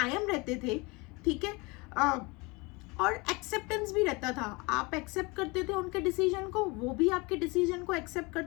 रहते थे, ठीक है। और एक्सेप्टेंस भी रहता था, आप एक्सेप्ट करते थे उनके डिसीजन को, वो भी आपके डिसीजन को एक्सेप्ट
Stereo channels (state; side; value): quieter; right; 26.6 dB